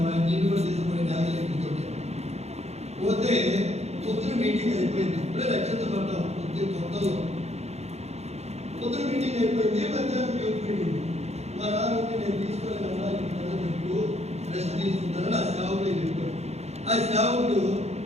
నేను కూడా తీసుకుని న్యాయాలయం పోతే పొద్దున మీటింగ్ అయిపోయింది. ఇప్పుడే రక్షణ పడ్డాం కొత్తలో. పొద్దున మీటింగ్ అయిపోయింది, మధ్యాహ్నం యూత్ మీటింగ్. మా నాన్న నేను తీసుకోలేదన్నా మీకు రెస్ట్ తీసుకుంటానని ఆ సేవకుడు చెప్పాడు. ఆ సేవకుడు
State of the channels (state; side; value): late; left; 0.31 ms